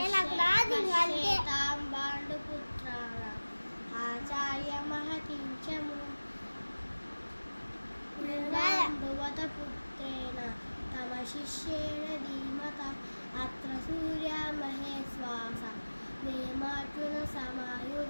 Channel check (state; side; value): inverted; both; correlation -1.00